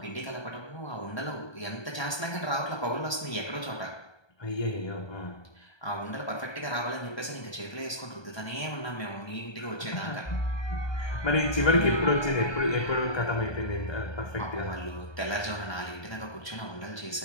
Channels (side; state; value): right; late; 1.2 ms